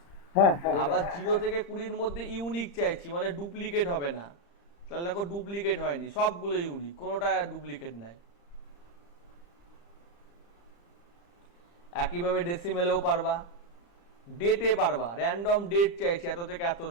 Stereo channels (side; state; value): right; late; 35 ms